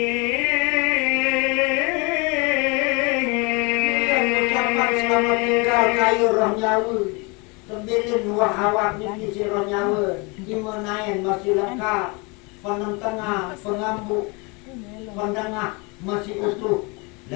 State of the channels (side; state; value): right; quieter; 29.0 dB